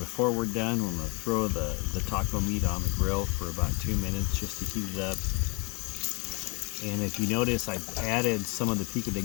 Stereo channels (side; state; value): right; quieter; 30.1 dB